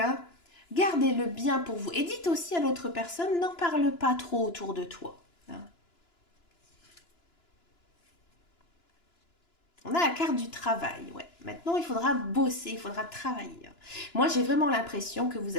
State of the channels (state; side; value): late; right; 2.9 ms